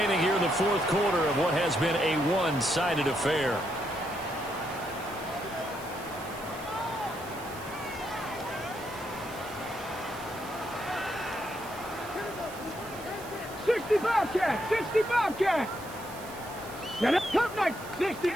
here in the fourth quarter of what has been a one-sided affair. Bobcat, 60 Bobcat. Now that's top night,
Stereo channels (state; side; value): noise; right; hiss, 17 dB below the sound